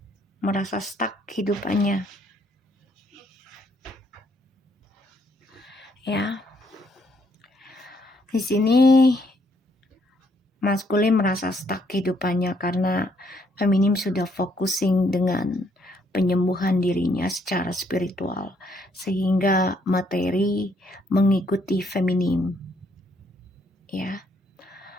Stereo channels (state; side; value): normal; both; correlation 0.70